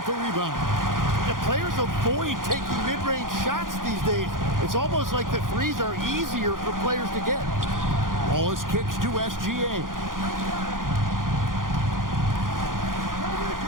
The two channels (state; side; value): late; left; 0.90 ms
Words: the rebound. The players avoid taking mid-range shots these days. It's almost like the threes are easier for players to get. Wallace kicks to SGA.